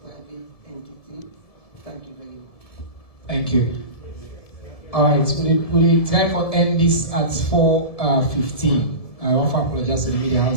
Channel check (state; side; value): late; right; 1.7 ms